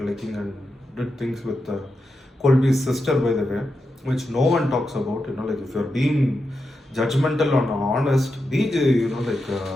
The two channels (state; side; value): normal; both; correlation 0.88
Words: liking and did things with Colby's sister, by the way, which no one talks about. If you're being judgmental or honest, be give